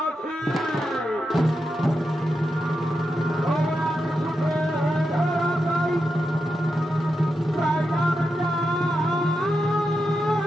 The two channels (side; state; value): both; normal; correlation 0.87